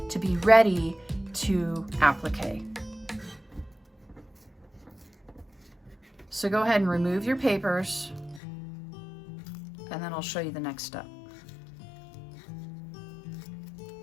to be ready to applique. So go ahead and remove your papers, and then I'll show you the next step.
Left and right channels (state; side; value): drops out; right; at 8.4 s